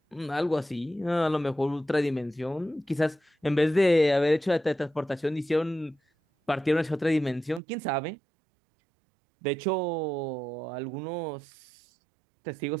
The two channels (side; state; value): left; drops out; at 7.6 s